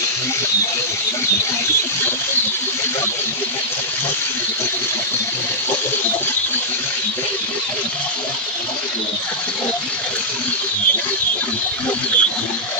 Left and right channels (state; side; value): normal; both; correlation -0.10